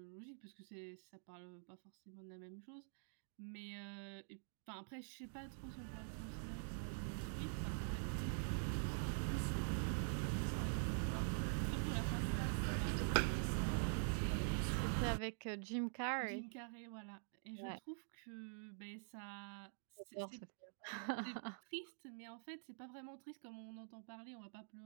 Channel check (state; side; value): silent; left; digital silence